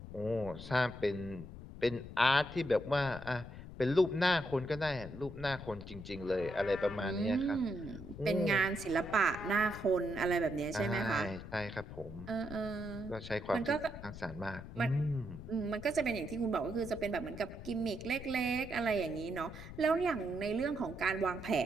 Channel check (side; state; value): left; noise; rumble, 12 dB below the sound